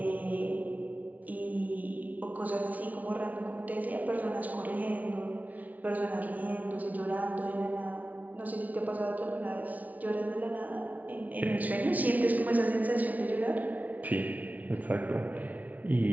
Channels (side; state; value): left; late; 0.074 ms